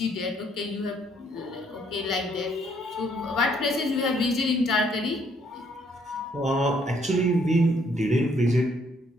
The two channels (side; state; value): both; normal; correlation 0.68